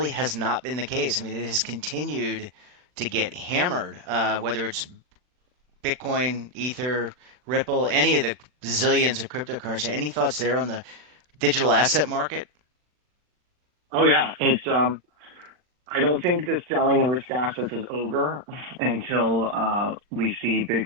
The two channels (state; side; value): late; left; 40 ms